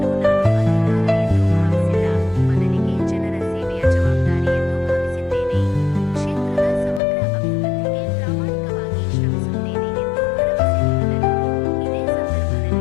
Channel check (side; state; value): right; drops out; at 7.0 s